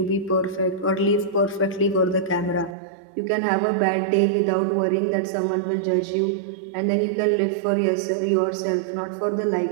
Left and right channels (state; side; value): drops out; left; at 2.8 s